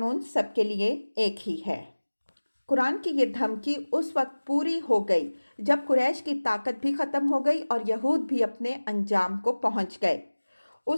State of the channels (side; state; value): both; inverted; correlation -1.00